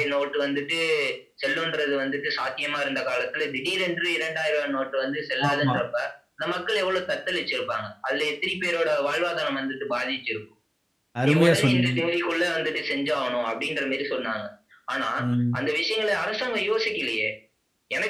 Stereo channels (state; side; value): identical; both; correlation 1.00